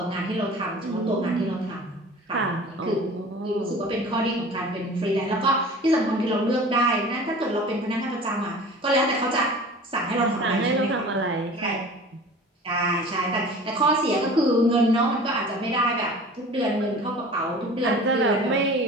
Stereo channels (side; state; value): both; normal; correlation 0.42